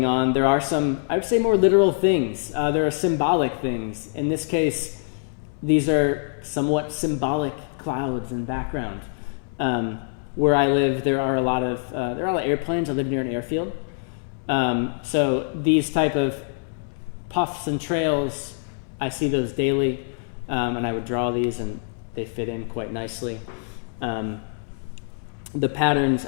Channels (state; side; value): silent; right; digital silence